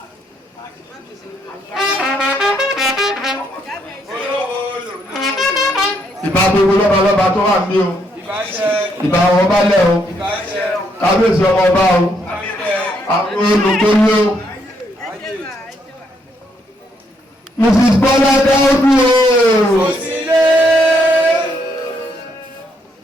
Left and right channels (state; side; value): normal; both; correlation 0.74